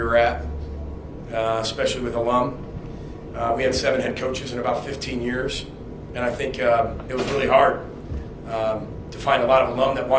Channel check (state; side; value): identical; both; correlation 1.00